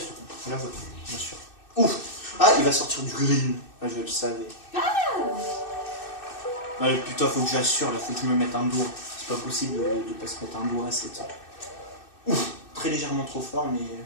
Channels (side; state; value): right; late; 2.6 ms